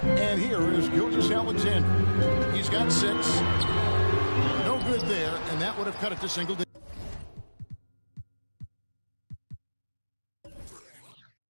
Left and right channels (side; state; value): both; inverted; correlation -1.00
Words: And here is Gilgeous-Alexander. He's got 6. No good there, and that would have cut it to single digits.